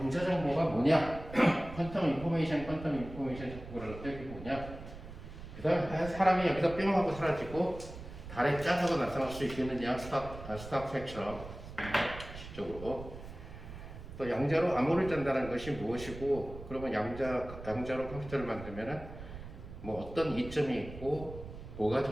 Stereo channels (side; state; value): right; noise; rumble, 13 dB below the sound